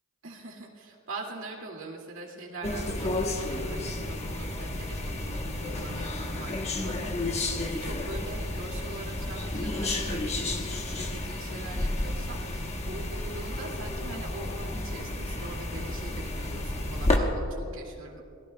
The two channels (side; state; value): both; normal; correlation 0.59